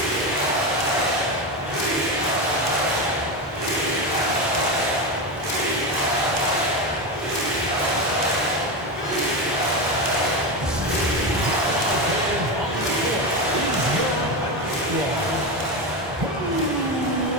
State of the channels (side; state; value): both; normal; correlation 0.16